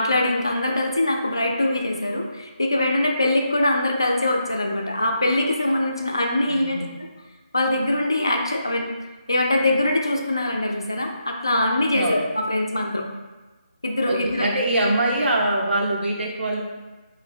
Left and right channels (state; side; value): inverted; both; correlation -0.79